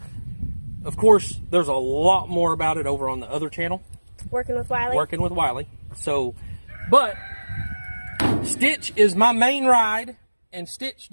of course, there's a lot more about it over on the other channel. Working with Wiley. Working with Wiley. So, but Stitch is my main ride, and Stitch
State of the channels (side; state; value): both; inverted; correlation -1.00